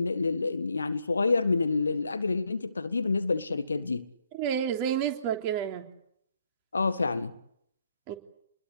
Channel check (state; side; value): inverted; both; correlation -0.75